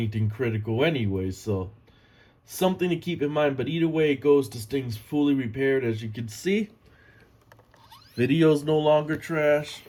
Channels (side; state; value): both; identical; correlation 1.00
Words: critical anyway. So something to keep in mind. But either way it goes, this thing's fully repaired, as you can see. Video's no longer trash.